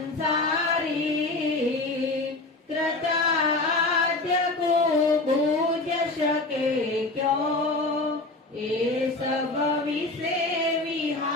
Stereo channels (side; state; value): right; quieter; 3.1 dB